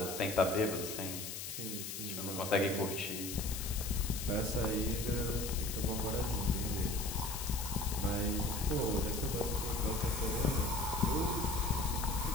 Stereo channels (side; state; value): left; noise; hiss, 6 dB below the sound